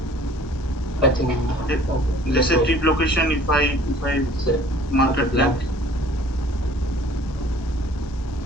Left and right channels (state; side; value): late; right; 1.2 ms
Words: I think. Let's say trip location. If I Say, mark it blank.